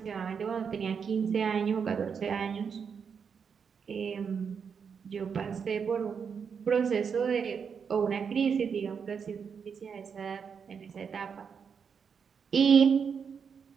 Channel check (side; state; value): left; quieter; 6.5 dB